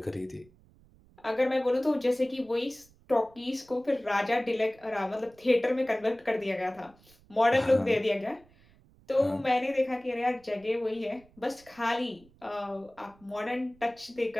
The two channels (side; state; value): right; noise; rumble, 28 dB below the sound